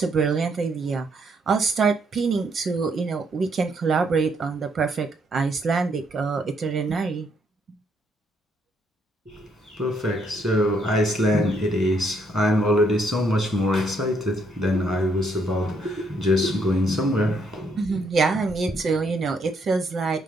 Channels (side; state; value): both; normal; correlation 0.72